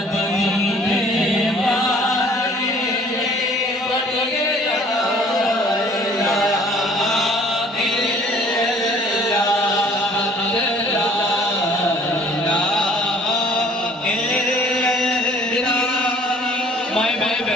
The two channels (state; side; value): normal; both; correlation 0.54